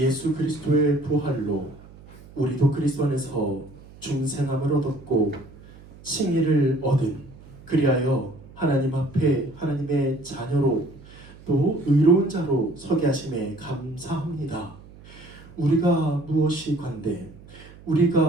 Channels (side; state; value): right; noise; hum, 21 dB below the sound